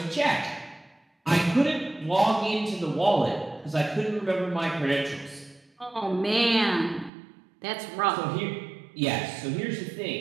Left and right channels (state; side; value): drops out; left; at 7.1 s